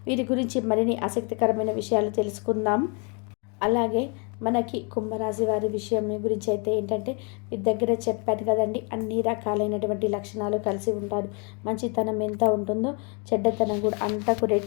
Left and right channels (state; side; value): quieter; right; 35.3 dB